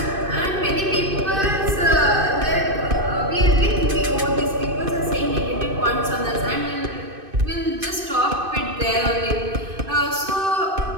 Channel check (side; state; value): left; late; 2.5 ms